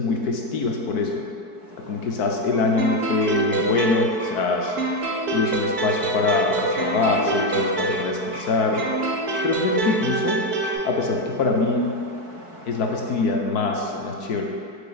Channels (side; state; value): right; late; 4.6 ms